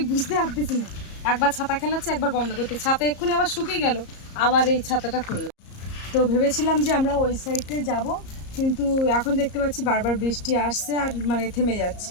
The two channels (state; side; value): late; right; 34 ms